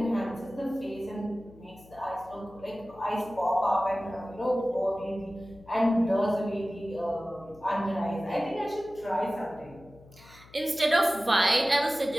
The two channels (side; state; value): left; noise; hum, 23 dB below the sound